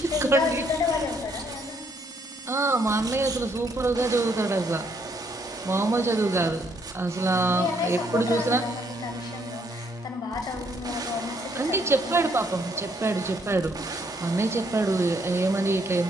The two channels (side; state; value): both; normal; correlation 0.70